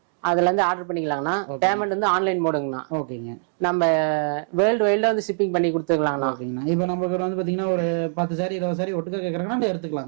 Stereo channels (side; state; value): left; silent; digital silence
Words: அதுல இருந்து ஆர்டர் பண்ணிக்கலாங்கண்ணா. பேமெண்ட் வந்து ஆன்லைன் மோடுங்கண்ணா. ஓகேங்க. நம்ம வேர்ல்டு வைல்ட்ல வந்து ஷிப்பிங் பண்ணி கொடுத்துக்கலாங்கண்ணா. ஓகேங்கண்ணா. இப்போ நம்ம கிட்ட வந்து பாத்தீங்கன்னா ஒரு 10 சாரி 20 சாரி ஒட்டுக்கா கேக்குறாங்கன்னா